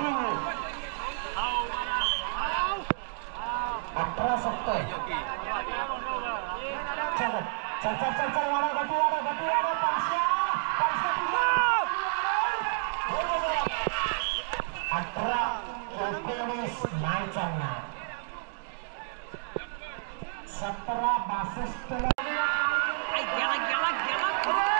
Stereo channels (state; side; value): silent; left; digital silence